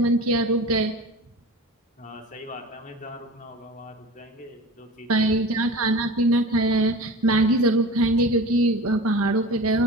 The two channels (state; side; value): normal; both; correlation 0.35